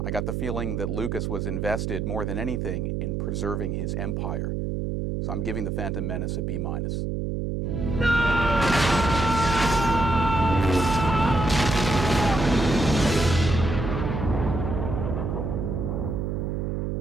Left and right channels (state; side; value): noise; right; hum, 2 dB below the sound